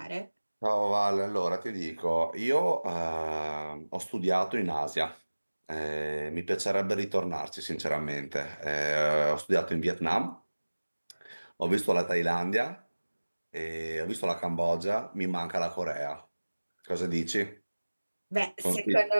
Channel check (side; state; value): both; inverted; correlation -1.00